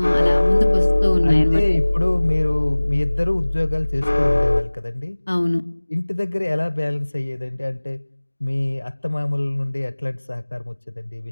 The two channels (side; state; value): both; inverted; correlation -1.00